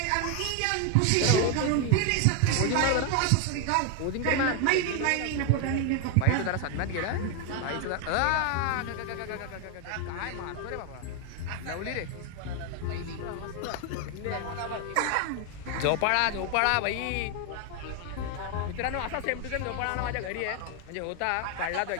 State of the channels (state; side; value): different; both; correlation 0.01